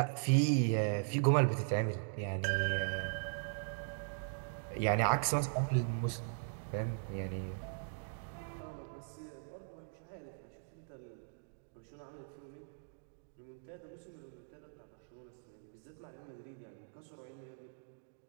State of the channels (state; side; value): silent; left; digital silence